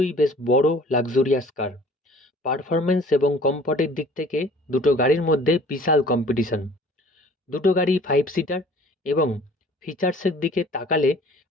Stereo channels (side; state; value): both; normal; correlation 0.51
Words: বেশ বড় লাক্সারিয়াস কার। পারফরমেন্স এবং কমফর্টের দিক থেকে দুটো গাড়ির মধ্যে বিশাল কম্পিটিশন। দুটো গাড়ি 5 সিটার এবং ফিচার্সের দিকে তাকালে